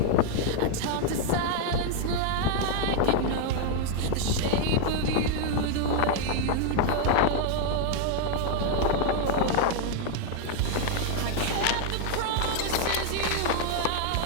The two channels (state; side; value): different; both; correlation 0.00